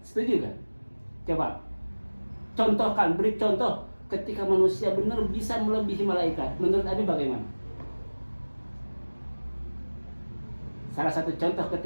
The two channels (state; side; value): inverted; both; correlation -1.00